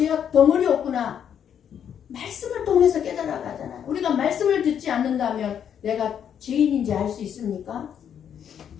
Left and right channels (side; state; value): right; quieter; 8.7 dB